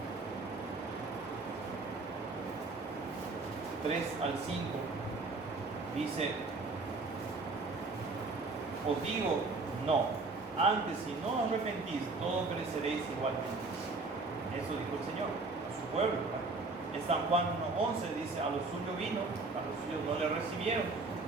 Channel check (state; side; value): quieter; left; 3.6 dB